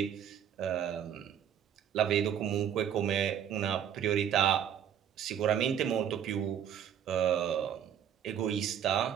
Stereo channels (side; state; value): left; quieter; 9.3 dB